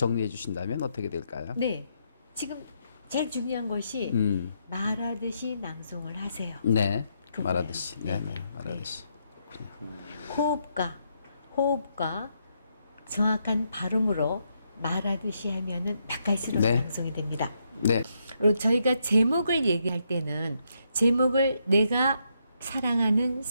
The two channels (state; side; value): inverted; both; correlation -0.78